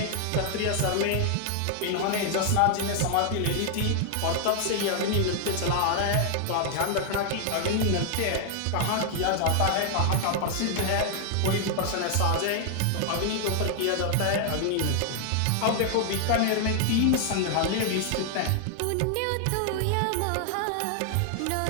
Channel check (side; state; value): both; different; correlation 0.00